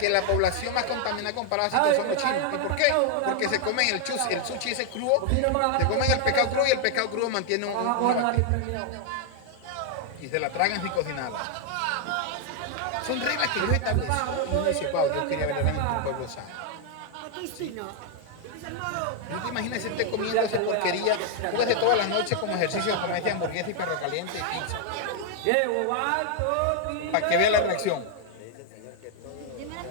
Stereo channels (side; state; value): both; different; correlation 0.00